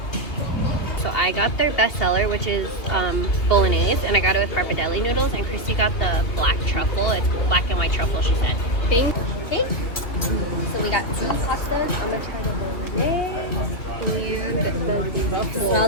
So I got their bestseller, which is bolognese, and I got it with pappardelle noodles, and Christy got the black truffle. It's black and white truffle, she said. Okay. So we got 2 pastas. I'm gonna try the bolognese and the truffle. It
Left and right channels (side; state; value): right; late; 2.7 ms